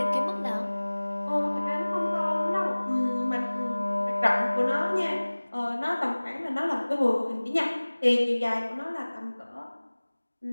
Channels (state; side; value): inverted; both; correlation -1.00